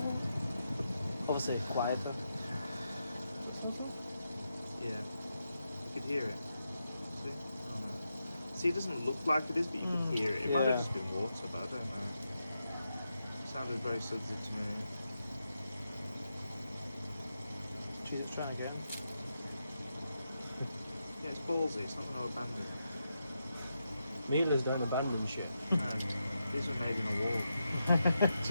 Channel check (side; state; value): both; inverted; correlation -0.86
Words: Obviously quieter. yeah. You could hear it. See? Oh, no. See, it doesn't look like it is, but you can hear it. It might yeah. have just been water, but I don't know. Sounded very sensitive to me. Jesus, trying again. Yeah, it's ballsy. It's not going to abandon it. Miele's don't abandon shit. No, these were made in a war.